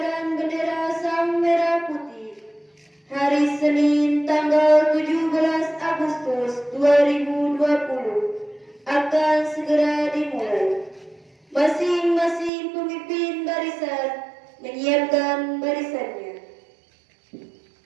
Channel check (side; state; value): left; drops out; at 12.5 s